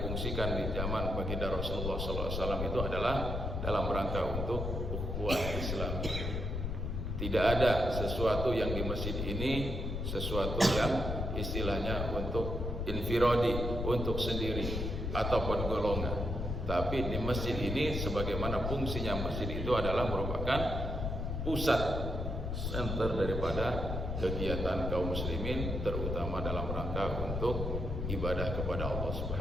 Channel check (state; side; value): noise; left; rumble, 2 dB below the sound